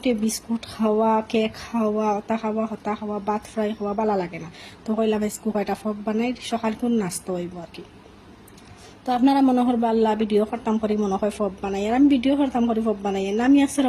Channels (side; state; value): both; identical; correlation 1.00